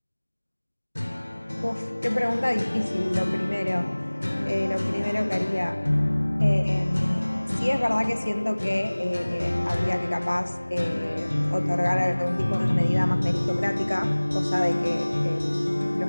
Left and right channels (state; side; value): inverted; both; correlation -1.00